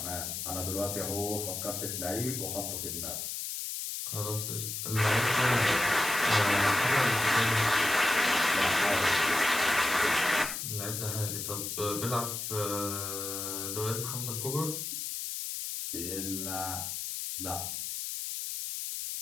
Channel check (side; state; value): left; noise; hiss, 4 dB below the sound